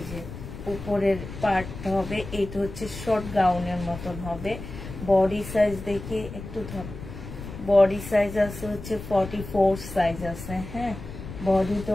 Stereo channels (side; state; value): left; noise; rumble, 11 dB below the sound